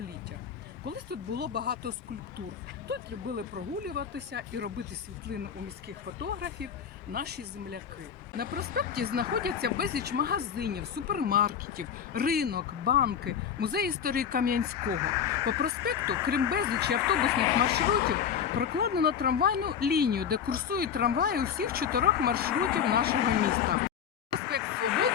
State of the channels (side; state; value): right; quieter; 8.0 dB